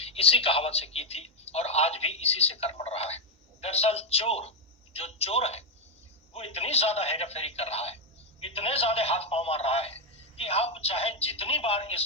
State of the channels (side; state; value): both; normal; correlation 0.04